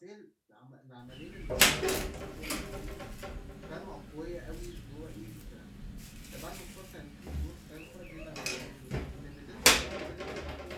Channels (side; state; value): both; identical; correlation 1.00